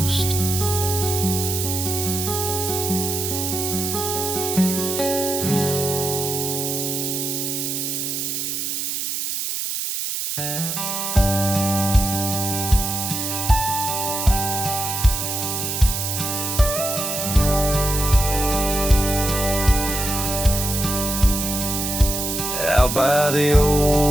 Out by the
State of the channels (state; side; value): noise; right; hiss, 2 dB below the sound